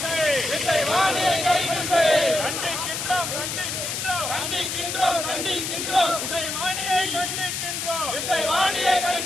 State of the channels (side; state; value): left; noise; hiss, 3 dB below the sound